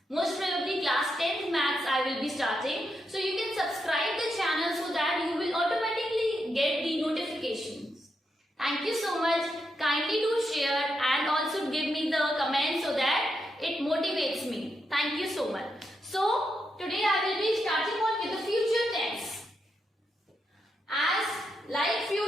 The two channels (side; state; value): both; normal; correlation 0.83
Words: Most probably class 10th maths I will be starting. So you can subscribe the channel so that you will automatically get the notifications. Thank you so much. Kindly do share and also give me the comments so that it motivates me. Thank you so much. So today I will be starting on with the future tense. As like